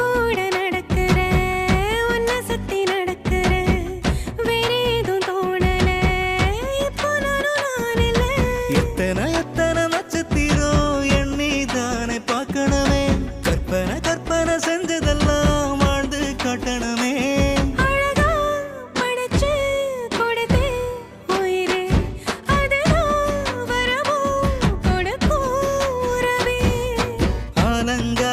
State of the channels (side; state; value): both; identical; correlation 1.00